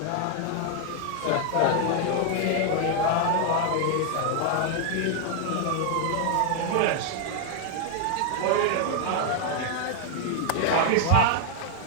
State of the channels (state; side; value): different; both; correlation 0.00